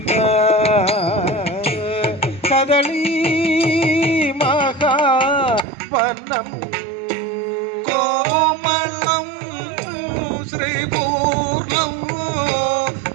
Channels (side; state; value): left; drops out; at 5.7 s